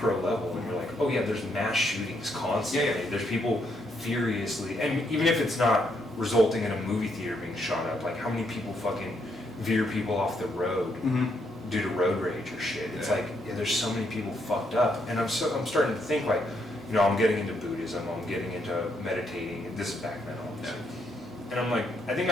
level, and you're like, oh yeah, there's mass shootings constantly. Yeah. There's people furiously, and even if it's not resulting in a movie theater being shot up, like how many people fucking veer people off the road due to road rage or shit. It's like, yeah, there's so many people fucked up, and I'm starting to think like, I'm getting into Buddhism, I'm getting into meditating, and this is back then obviously. And I'm like, I think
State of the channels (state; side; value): normal; both; correlation 0.76